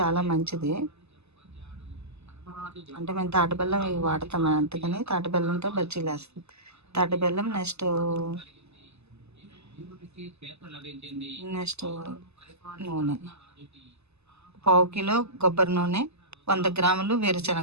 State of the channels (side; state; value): left; late; 0.80 ms